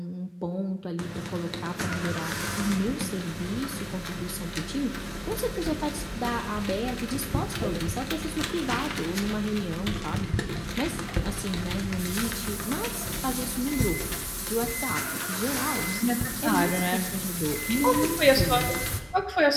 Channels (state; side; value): identical; both; correlation 1.00